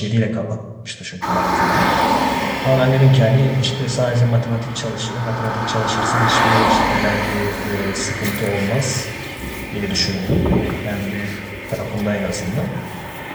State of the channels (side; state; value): both; identical; correlation 1.00